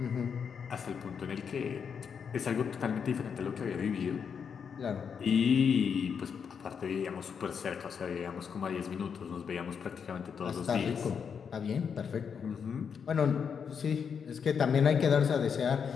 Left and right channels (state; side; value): quieter; right; 6.8 dB